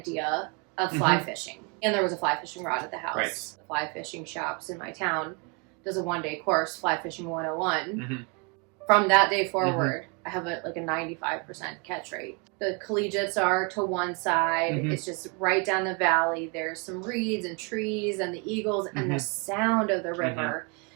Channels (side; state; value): left; quieter; 33.0 dB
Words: of fly fishing. And there was a fly fishing rod at the house. Right. The fly fishing shops in my town does a 1-day course, Fly Fishing 101. From that day forward, I have a 95% catch rate. The collegiates are to one side. It's just right down the valley. There's some reeds and trees and the eagles and the sound of the river.